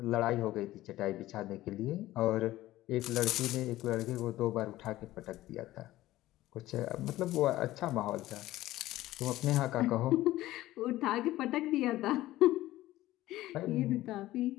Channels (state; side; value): quieter; right; 16.0 dB